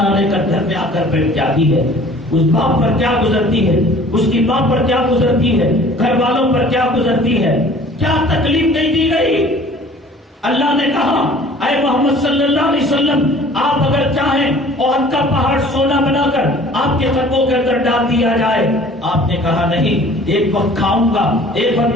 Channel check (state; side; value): normal; both; correlation 0.49